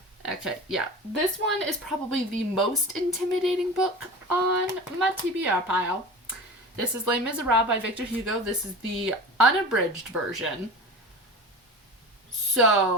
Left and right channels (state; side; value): normal; both; correlation 0.33